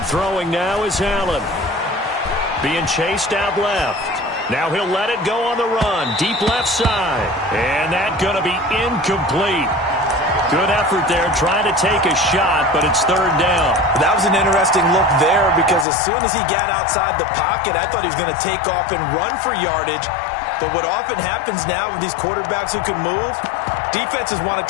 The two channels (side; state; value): right; drops out; at 15.9 s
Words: Throwing now is Allen. Being chased out left. Now he'll let it go on the run. Deep left side. And that's going to be incomplete. Good effort there trying to take a shot, but it's third down. That was an interesting look there because as soon as he got outside the pocket, I thought he was going to take off and run for yardage. But what often happens now with these quarterbacks who can move, defenses want to